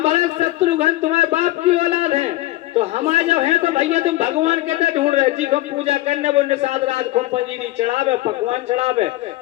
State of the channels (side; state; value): right; quieter; 16.8 dB